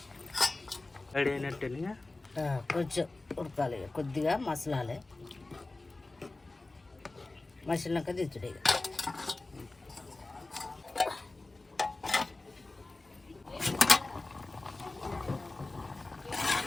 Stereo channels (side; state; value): right; quieter; 3.1 dB